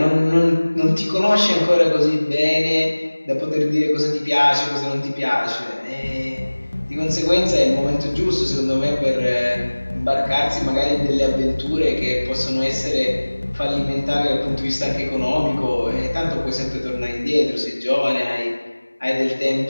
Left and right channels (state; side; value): inverted; both; correlation -1.00